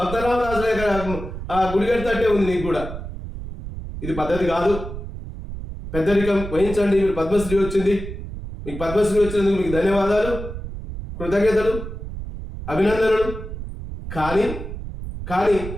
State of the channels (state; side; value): noise; right; rumble, 9 dB below the sound